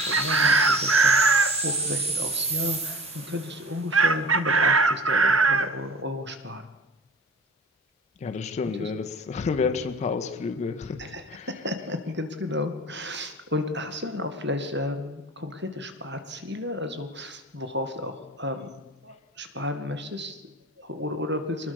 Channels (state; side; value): normal; both; correlation 0.41